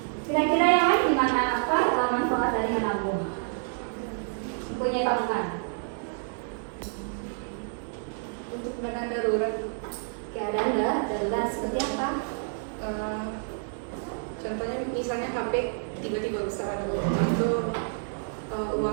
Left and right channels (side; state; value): left; silent; digital silence